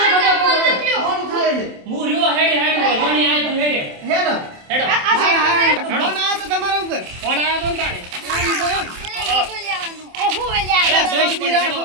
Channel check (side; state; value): left; late; 27 ms